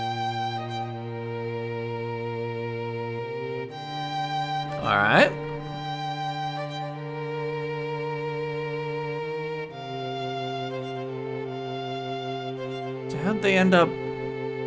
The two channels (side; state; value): both; identical; correlation 1.00